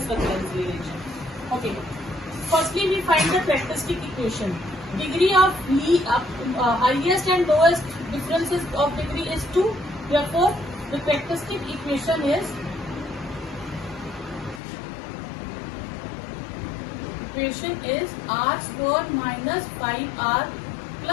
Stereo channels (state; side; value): drops out; right; at 14.6 s